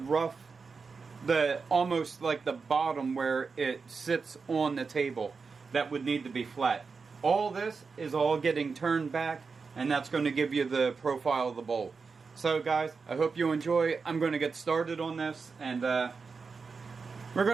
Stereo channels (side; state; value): left; quieter; 4.9 dB